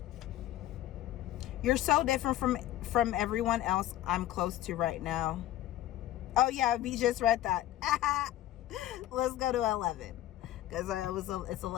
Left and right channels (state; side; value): quieter; right; 13.9 dB